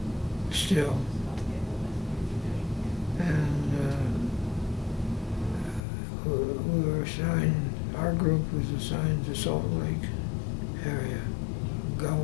still, and we were assigned. Our group was assigned to Salt Lake area,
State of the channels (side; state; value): right; drops out; at 5.9 s